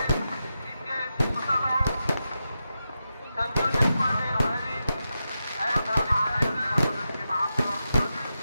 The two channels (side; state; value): both; inverted; correlation -0.89